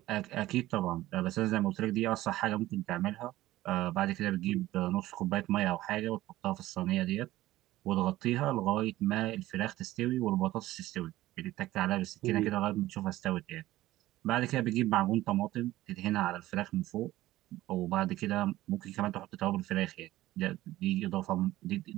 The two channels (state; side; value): quieter; left; 16.1 dB